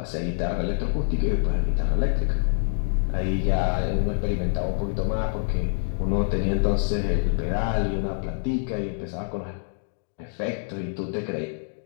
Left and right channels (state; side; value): silent; right; digital silence